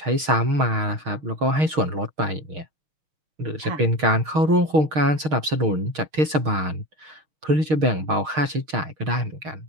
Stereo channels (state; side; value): late; left; 6.4 ms